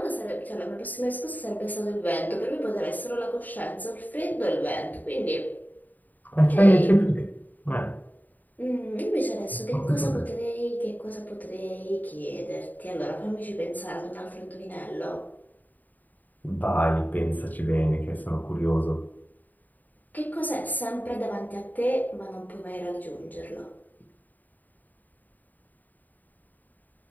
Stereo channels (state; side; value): late; right; 0.084 ms